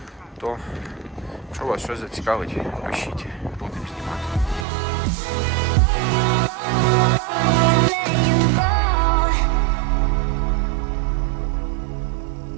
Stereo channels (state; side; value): drops out; left; at 4.7 s